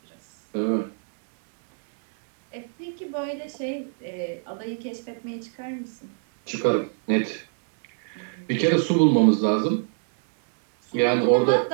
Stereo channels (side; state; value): left; silent; 62 dB below the other